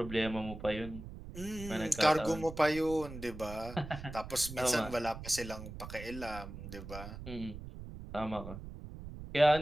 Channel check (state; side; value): noise; right; rumble, 11 dB below the sound